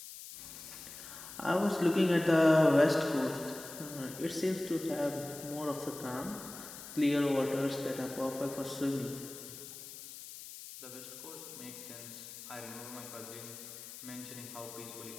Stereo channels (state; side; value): noise; left; hiss, 13 dB below the sound